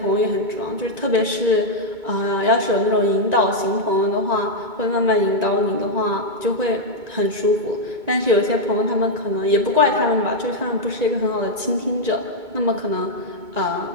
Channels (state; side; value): late; left; 2.2 ms